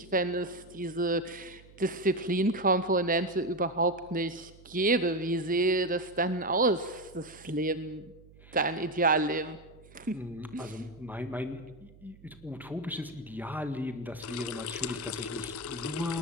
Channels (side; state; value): right; noise; hum, 23 dB below the sound